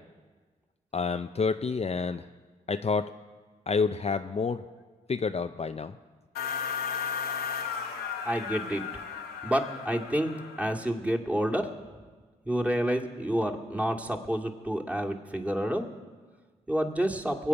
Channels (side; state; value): both; normal; correlation 0.70